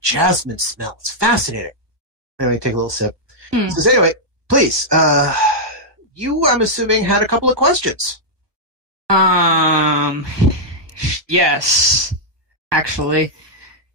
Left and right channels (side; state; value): left; late; 1.3 ms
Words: jasmine smell. It's fascinating." Anyway, take a little sip. He says, "Anyway, please, you, I'm assuming, had a couple of questions." Yes, actually.